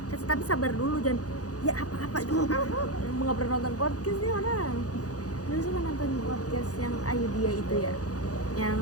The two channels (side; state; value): right; late; 0.67 ms